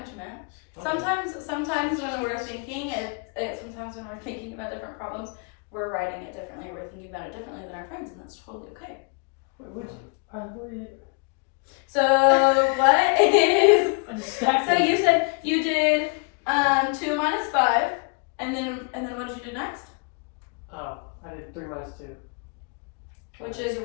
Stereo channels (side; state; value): right; quieter; 36.2 dB